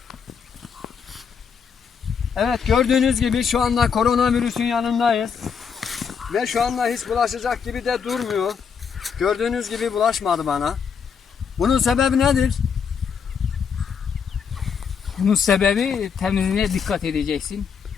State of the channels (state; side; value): quieter; right; 6.6 dB